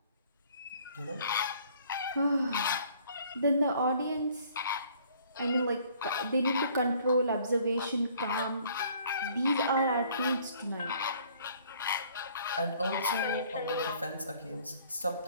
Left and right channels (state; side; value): inverted; both; correlation -0.58